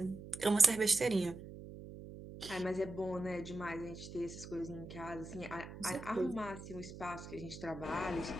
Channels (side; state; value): right; noise; hum, 12 dB below the sound